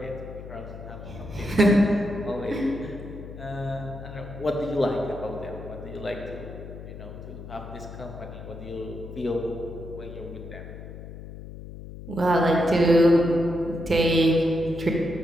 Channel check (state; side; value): noise; left; hum, 12 dB below the sound